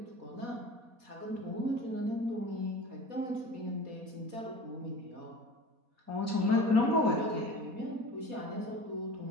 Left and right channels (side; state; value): left; late; 4.2 ms